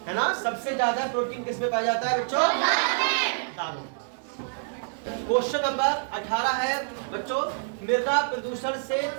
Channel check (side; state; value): left; silent; 60 dB below the other